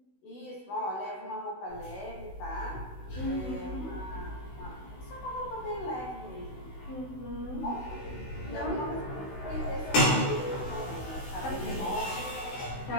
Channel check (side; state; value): right; late; 16 ms